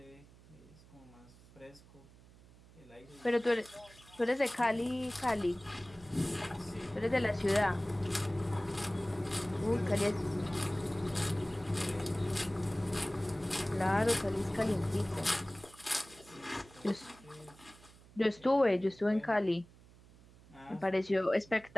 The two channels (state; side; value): noise; right; hum, 23 dB below the sound